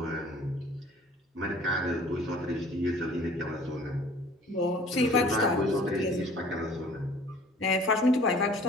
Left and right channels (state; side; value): normal; both; correlation 0.51